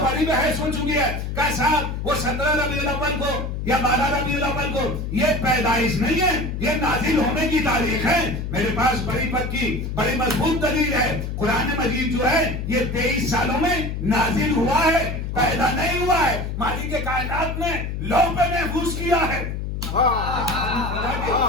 بڑی بحث ہو چکی ہے کہ صاحب وہ 17 ربیع الاول کو یا 12 ربیع الاول کو، یہ پیدائش نہیں ہے، یہ نازل ہونے کی تاریخ ہے۔ میرے پاس بڑی پکی بڑی مضبوط دلیل ہے، قرآن مجید جو ہے یہ 23 سالوں میں نازل ہوا ہے، پیدا نہیں ہوا ہے۔ مالک کائنات نے لوح پہ محفوظ کیا ہے۔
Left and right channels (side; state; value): left; noise; hum, 4 dB below the sound